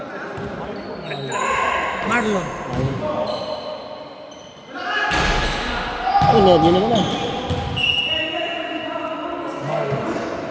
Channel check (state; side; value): identical; both; correlation 1.00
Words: Marlon. Ano, di naman na.